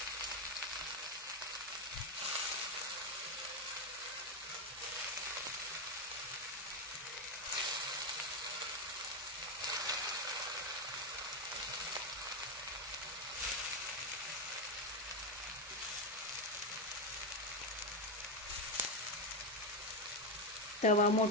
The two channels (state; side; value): normal; both; correlation 0.08